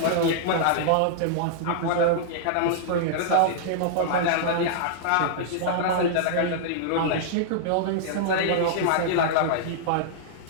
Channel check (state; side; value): different; both; correlation -0.02